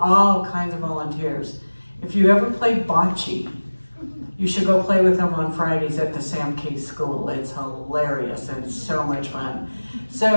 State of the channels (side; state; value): both; inverted; correlation -1.00